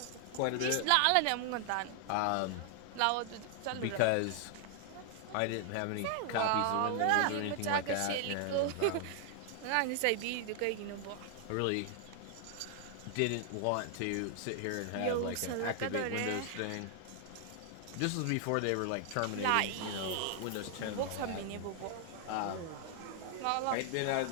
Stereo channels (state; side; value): different; both; correlation 0.00